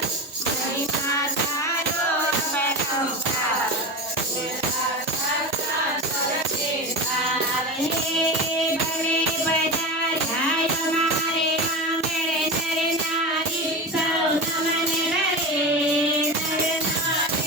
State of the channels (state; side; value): normal; both; correlation 0.25